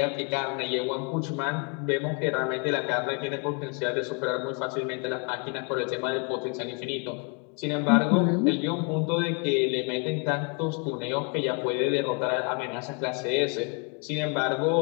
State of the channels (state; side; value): quieter; right; 36.0 dB